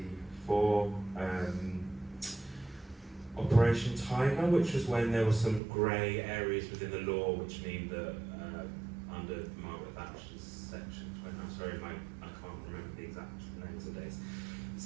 Operation Tiger, which was when there were some grey areas within the law, which mean that under Margaret Thatcher's section 20, I'm sorry, I can't remember the exact names of days.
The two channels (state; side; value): drops out; left; at 5.6 s